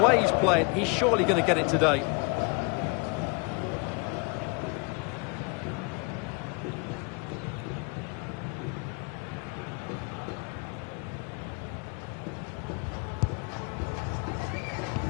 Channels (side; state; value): right; quieter; 32.0 dB